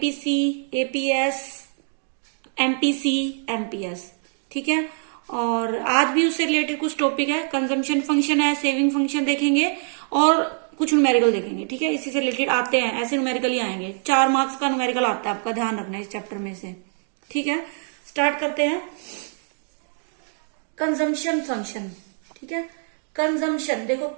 एपीएस, एमपीसी, एमपीएस। ठीक है। और आज भी उससे रिलेटेड कुछ टॉपिक है, कंजम्पशन फंक्शन है, सेविंग फंक्शन देखेंगे और कुछ न्यूमेरिकल देखेंगे। ठीक है, इसी से रिलेटेड आते हैं, ऐसे न्यूमेरिकल ही आएंगे। 4 मार्क्स का न्यूमेरिकल आता है, आपका ध्यान रखना है इस चैप्टर में से। ठीक है, स्टार्ट करते हैं। Consumption function. ठीक है, कंजम्पशन देखो,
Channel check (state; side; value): silent; left; 60 dB below the other